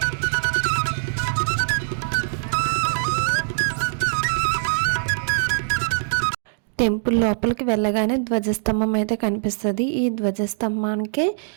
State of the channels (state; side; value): silent; left; digital silence